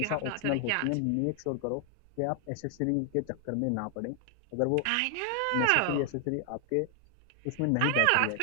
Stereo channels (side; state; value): both; different; correlation 0.00